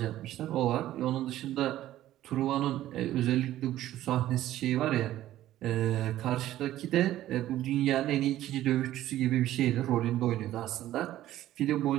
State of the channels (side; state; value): left; quieter; 13.8 dB